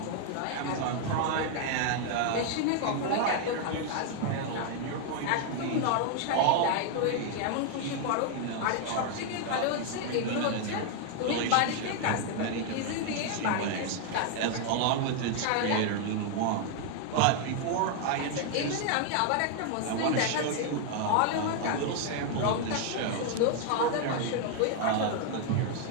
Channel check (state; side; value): different; both; correlation 0.00